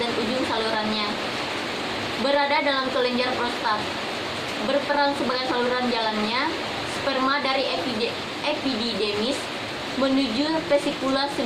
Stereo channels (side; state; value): both; identical; correlation 1.00